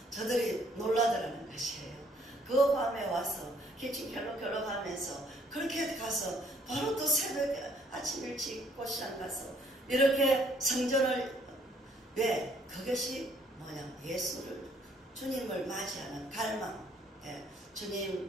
저들이 놀라더라는 것이에요. 그 밤에 와서 기침 결럭결럭 하면서 그렇게 가서 바로 또 새벽에 아침 일찍 꽃시장 가서 이렇게 성전을 왜? 그것이 뭐냐? 예수를 주님을 맞이하는 갈망. 예.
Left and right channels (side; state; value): both; normal; correlation 0.65